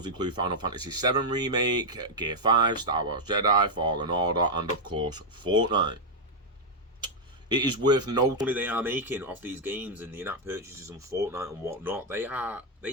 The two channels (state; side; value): normal; both; correlation -0.01